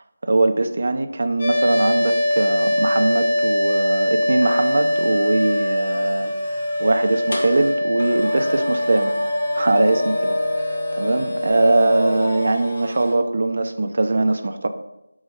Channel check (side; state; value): both; inverted; correlation -0.96